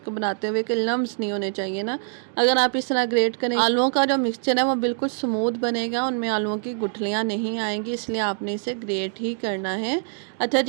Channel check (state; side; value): silent; left; digital silence